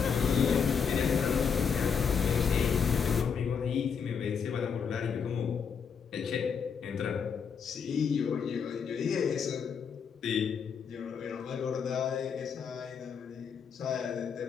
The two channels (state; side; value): quieter; right; 6.5 dB